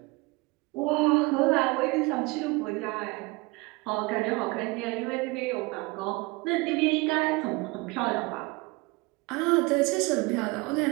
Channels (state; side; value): quieter; left; 25.0 dB